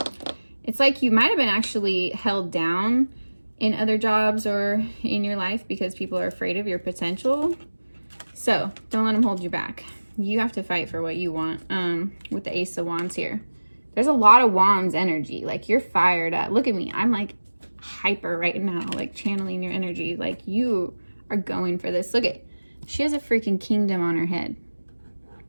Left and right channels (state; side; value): inverted; both; correlation -1.00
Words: it's like you might have been actually held down in other jobs or in your life because people are afraid of your potential. So don't let them hold you back. You have to fight for what you want. With the Ace of Wands here, there's a lot of Wands energy. Like, you're fired up. Look at me. I'm like hyper right now, like channeling your energy. Like, you are going for this. Look at, she has a freaking kingdom on her head.